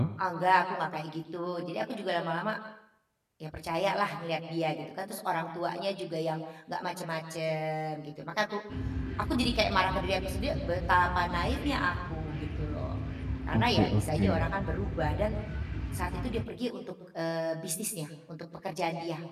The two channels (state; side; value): identical; both; correlation 1.00